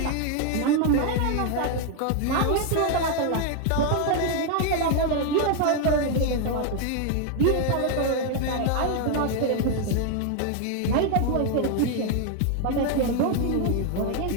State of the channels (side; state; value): both; different; correlation 0.01